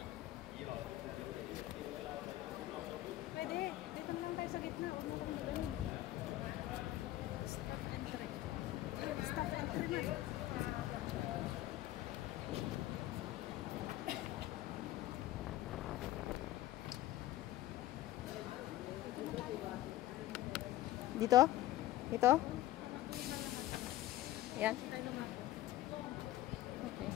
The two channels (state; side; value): quieter; right; 15.0 dB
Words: Pwede. Dito na lang tayo sa gitna. Huwag mo kami doon. Stop entry. Stop entry na. Dito? Dito? Yan. Okay.